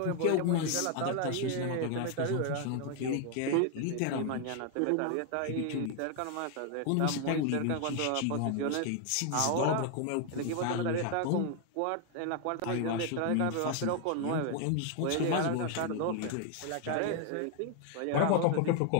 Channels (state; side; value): different; both; correlation 0.01